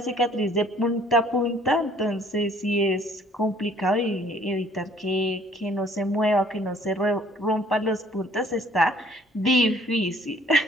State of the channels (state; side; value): normal; both; correlation 0.58